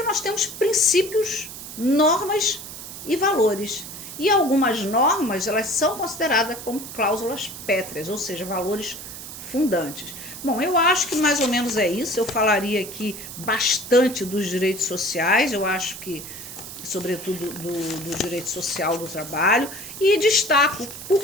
nós temos princípios, normas e valores. E algumas normas, elas são consideradas como cláusulas pétreas, ou seja, valores fundantes. Bom, eu acho que mais ou menos é isso. Eu falaria aqui bastante dos direitos sociais, eu acho que, sobretudo, do direito social do trabalho. E destaco, por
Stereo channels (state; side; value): noise; right; hiss, 11 dB below the sound